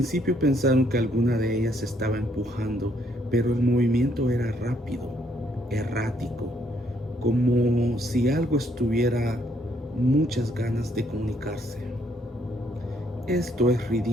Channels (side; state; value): both; normal; correlation 0.70